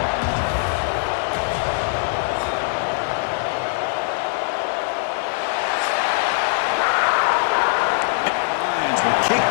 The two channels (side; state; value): right; silent; digital silence